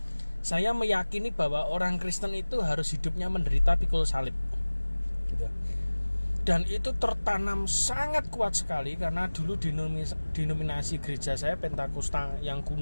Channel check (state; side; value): inverted; both; correlation -1.00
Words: saya meyakini bahwa orang Kristen itu harus hidupnya menderita pikul salib gitu. Dan itu tertanam sangat kuat sekali karena dulu denominasi gereja saya Pentakosta yang